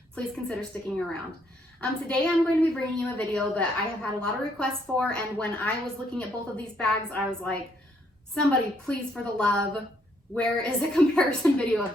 please consider sticking around. Today I'm going to be bringing you a video that I have had a lot of requests for, and when I was looking at both of these bags, I was like, somebody please, for the love, where is a comparison video of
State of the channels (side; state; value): both; normal; correlation 0.70